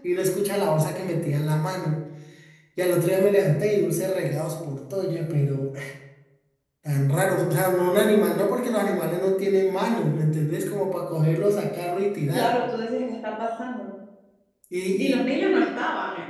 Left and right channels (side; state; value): both; identical; correlation 1.00